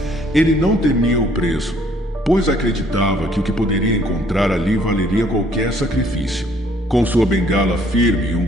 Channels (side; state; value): both; normal; correlation 0.62